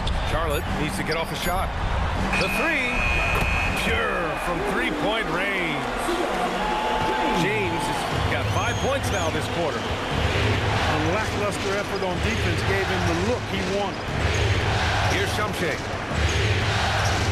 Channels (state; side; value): identical; both; correlation 1.00